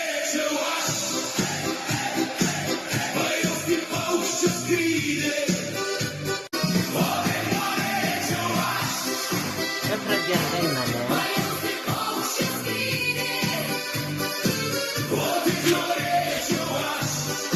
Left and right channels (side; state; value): both; identical; correlation 1.00